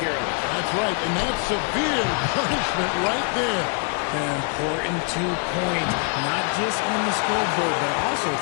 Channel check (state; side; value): quieter; right; 38.2 dB